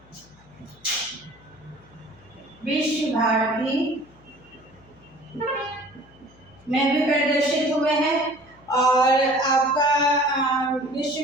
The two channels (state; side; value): noise; left; hum, 27 dB below the sound